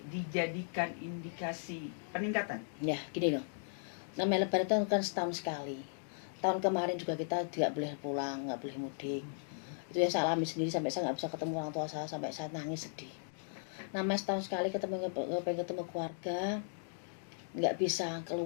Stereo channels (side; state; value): right; silent; digital silence